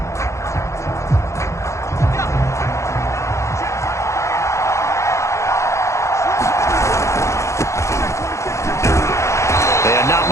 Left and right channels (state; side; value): late; right; 0.14 ms